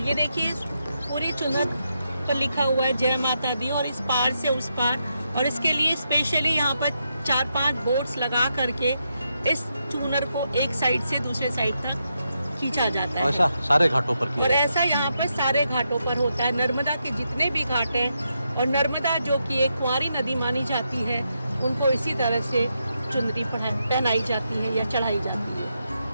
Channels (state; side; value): inverted; both; correlation -0.83